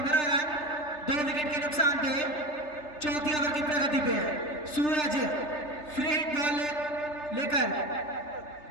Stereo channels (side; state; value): right; late; 3.3 ms